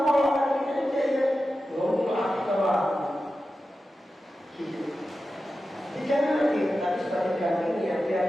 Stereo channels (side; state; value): both; normal; correlation 0.92